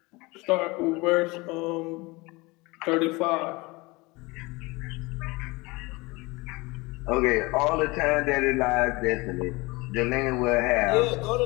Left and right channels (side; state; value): right; quieter; 24.0 dB